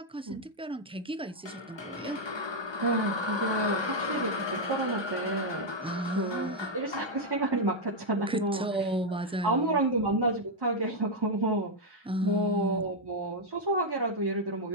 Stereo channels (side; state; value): both; normal; correlation -0.01